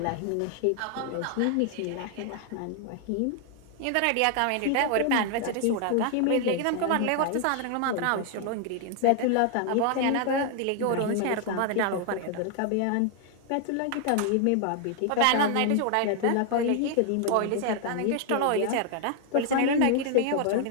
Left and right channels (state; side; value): different; both; correlation 0.00